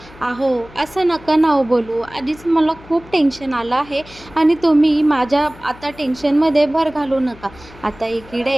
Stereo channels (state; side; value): noise; left; hum, 21 dB below the sound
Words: अहो असं नका ना हो बोलू, आधीच मला खूप टेन्शन आलं आहे आणि तुम्ही माझ्या आता टेन्शनमध्ये भर घालू नका. आता